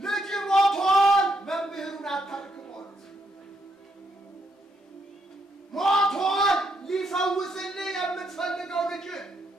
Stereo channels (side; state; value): both; normal; correlation 0.76